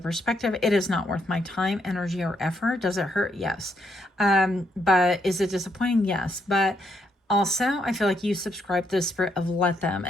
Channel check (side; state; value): both; normal; correlation 0.76